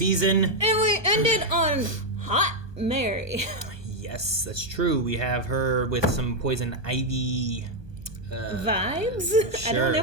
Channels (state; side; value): late; left; 1.2 ms